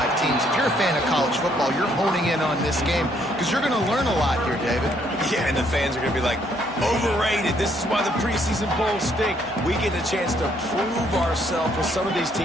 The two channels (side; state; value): both; normal; correlation 0.69